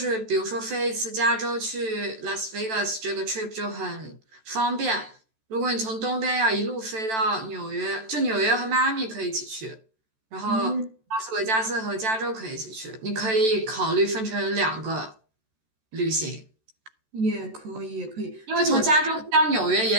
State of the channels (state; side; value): late; left; 14 ms